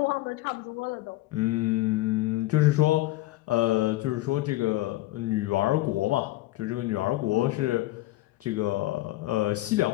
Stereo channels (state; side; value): quieter; right; 17.6 dB